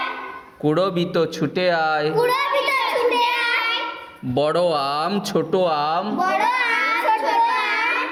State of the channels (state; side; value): identical; both; correlation 1.00